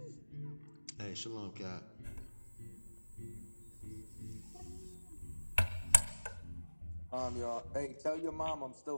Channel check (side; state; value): both; inverted; correlation -1.00